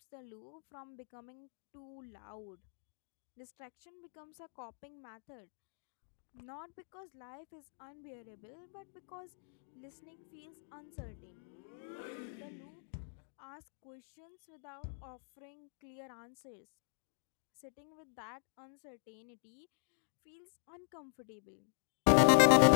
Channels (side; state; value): right; silent; digital silence